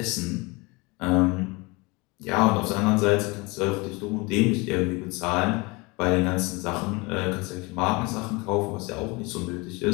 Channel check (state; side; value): quieter; right; 26.2 dB